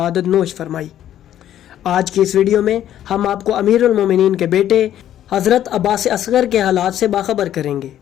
नोश फरमाई। आज की इस वीडियो में हम आपको अमीरुल मोमिनीन के बेटे हज़रत अब्बास असगर के हालात से बाखबर करेंगे।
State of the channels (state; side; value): quieter; right; 11.5 dB